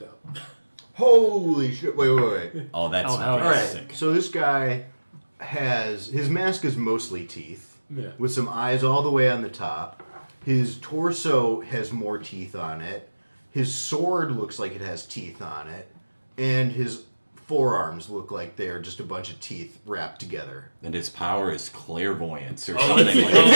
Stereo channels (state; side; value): inverted; both; correlation -1.00